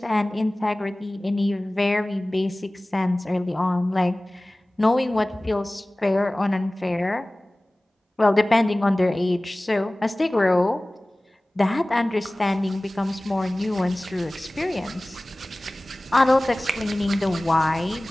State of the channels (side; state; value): both; normal; correlation 0.98